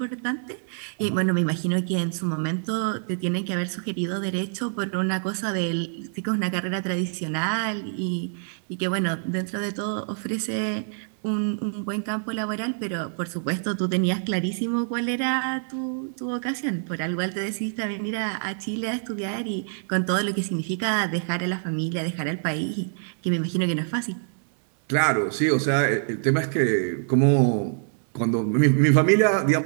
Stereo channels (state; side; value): silent; left; 61 dB below the other